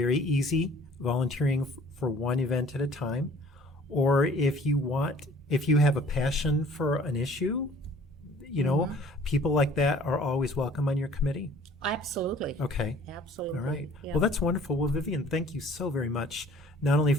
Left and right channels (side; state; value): right; noise; hum, 29 dB below the sound